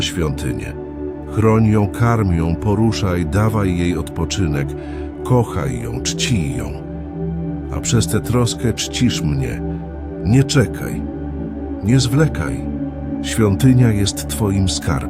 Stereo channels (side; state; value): both; identical; correlation 1.00